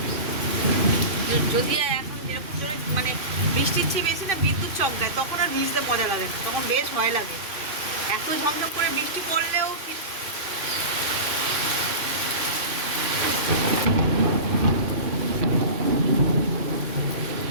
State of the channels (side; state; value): left; late; 3.6 ms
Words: যদি এখন যেরকম জোরে মানে বৃষ্টির চেয়ে বেশি না বিদ্যুৎ চমকায়, তখন আর ভিজতে মজা লাগে না, তখন বেশ ভয় লাগে। এত ঝমঝম করে বৃষ্টি পড়লেও